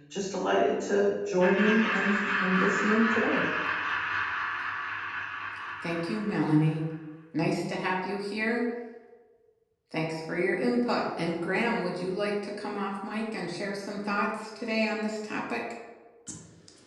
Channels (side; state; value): both; identical; correlation 1.00